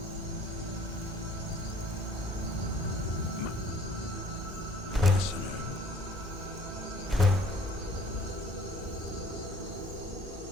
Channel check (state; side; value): normal; both; correlation 0.54